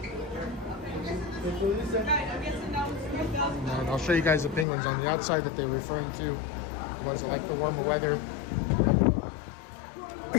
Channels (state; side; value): drops out; right; at 4.7 s